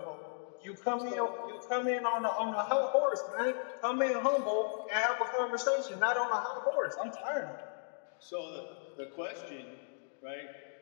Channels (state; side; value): silent; right; digital silence